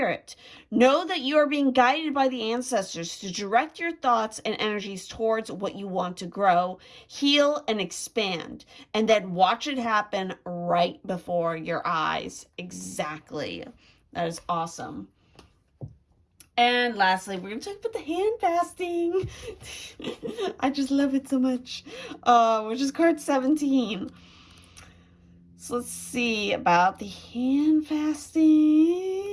Know that you are being guided by the ancestors to direct your thoughts and energies towards what you want to grow, heal, and expand, and then watch it happen right before your eyes. Exactly. That is awesome. And lastly, we're going to talk about the hand fasting. I just love it so much, which is card 17. So let's see about the hand fasting.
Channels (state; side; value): identical; both; correlation 1.00